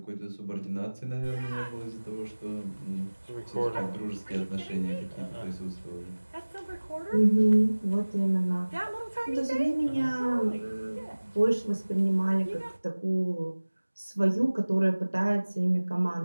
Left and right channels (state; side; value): inverted; both; correlation -1.00